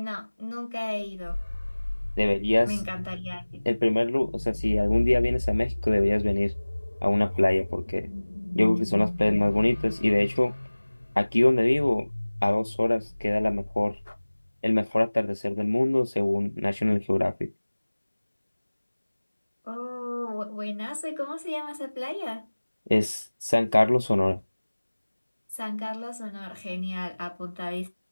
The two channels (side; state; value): both; inverted; correlation -1.00